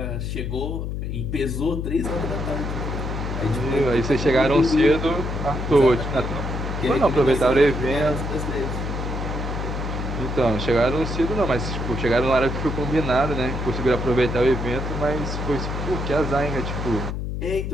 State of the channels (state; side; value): noise; left; hum, 3 dB below the sound